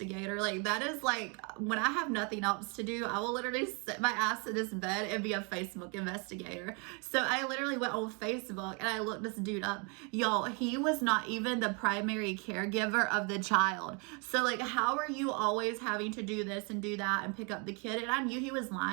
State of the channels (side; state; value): left; quieter; 33.8 dB